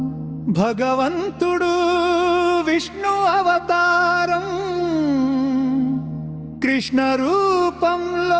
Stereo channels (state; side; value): identical; both; correlation 1.00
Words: భగవంతుడు విష్ణు అవతారం కృష్ణ